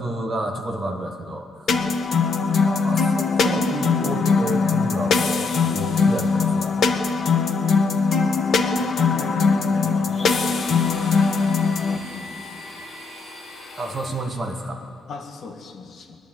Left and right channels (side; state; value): right; quieter; 4.0 dB